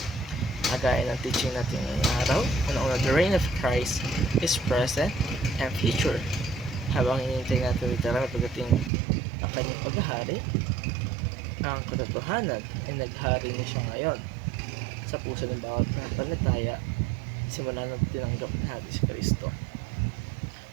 Kagaya ng teaching natin ngayong araw, una-una, the reign of Christ is present and future. Habang hinihintay natin literal pagdating ang kanyang paghahari, ang katotohanan ay naghari na siya ngayon sa puso ng bawat pananampalataya simula nang tinanggap natin si Kristo.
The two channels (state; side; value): drops out; left; at 8.9 s